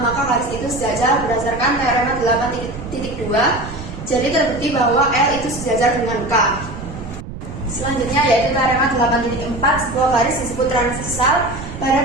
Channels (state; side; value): noise; right; rumble, 11 dB below the sound